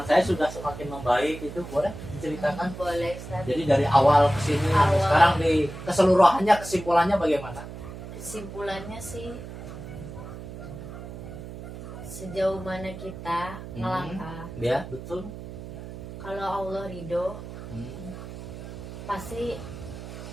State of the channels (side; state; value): right; noise; hum, 11 dB below the sound